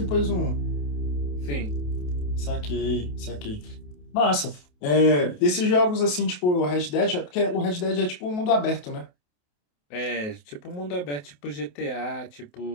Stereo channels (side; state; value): right; late; 28 ms